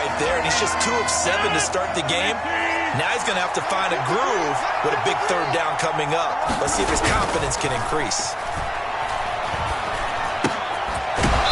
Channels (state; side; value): identical; both; correlation 1.00